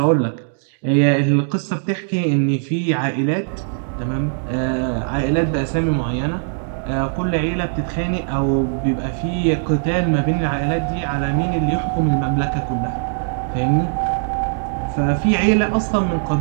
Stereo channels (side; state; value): left; silent; digital silence